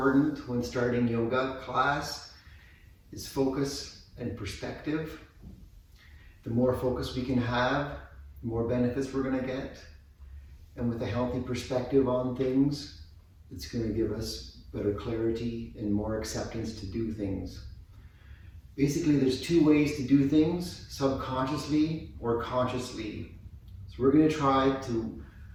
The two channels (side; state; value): both; identical; correlation 1.00